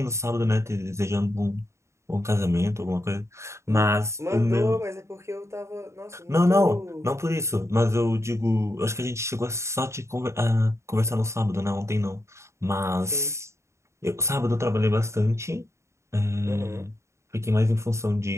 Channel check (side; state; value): left; late; 0.14 ms